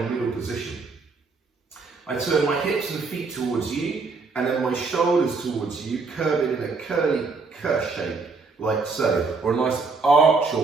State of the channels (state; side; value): quieter; left; 4.3 dB